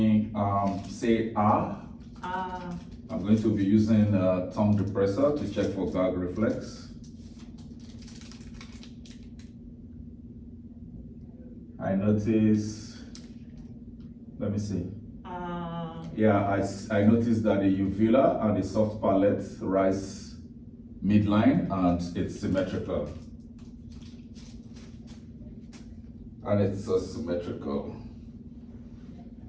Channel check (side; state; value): both; identical; correlation 1.00